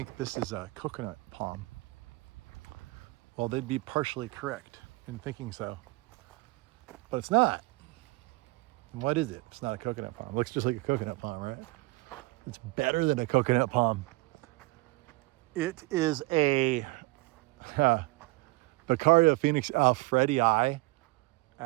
this is a coconut palm. Well, they'd be partially correct in thinking so, but it's not. And what is it? It's not a coconut palm. It looks just like a coconut palm, right? It's better than a coconut palm. It is a Becaria phoenix alfredii,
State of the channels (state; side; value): quieter; left; 23.1 dB